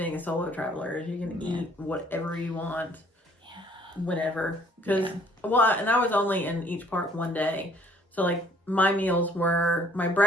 a solo traveler, is you can eat whatever you want, whenever. Because and I was only in each park one day, so my meals were, my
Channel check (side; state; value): both; normal; correlation 0.60